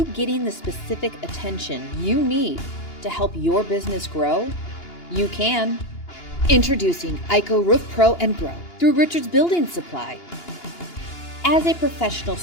getting the specific attention you need to help your business grow? You can. Introducing IHSA Roof Pro and Grow through Richards Building Supply. As a professional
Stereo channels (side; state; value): right; late; 2.9 ms